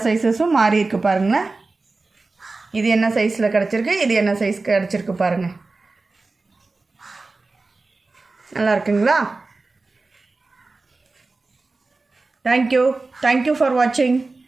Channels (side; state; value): left; quieter; 3.6 dB